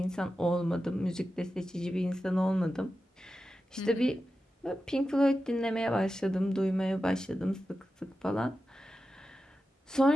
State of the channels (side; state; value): both; normal; correlation 0.92